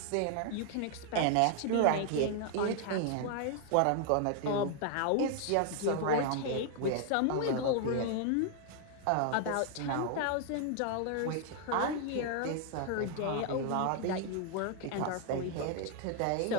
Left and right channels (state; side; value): different; both; correlation 0.00